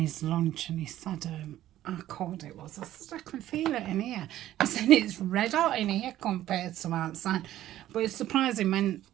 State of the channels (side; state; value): left; quieter; 13.4 dB